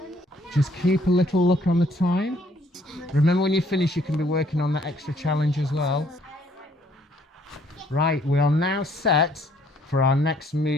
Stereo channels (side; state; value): both; normal; correlation 0.64